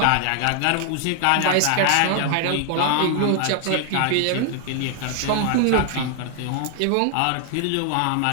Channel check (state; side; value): different; both; correlation 0.00